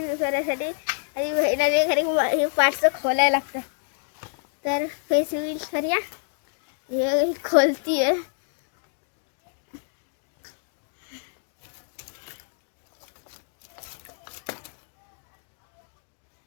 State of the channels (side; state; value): right; silent; digital silence